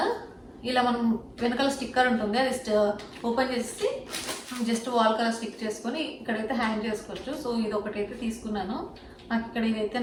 ఇలా మనం వెనకాల స్టిక్కర్ ఉంటుంది, అది ఓపెన్ చేసి జస్ట్ వాల్ కలర్ స్టిక్ చేసుకొని ఇక్కడైతే హ్యాంగ్ చేసుకోవచ్చు. సో ఇది ఒకటైతే తీసుకున్నాను, నాకు ఇక్కడ ఇదైతే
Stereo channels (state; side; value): identical; both; correlation 1.00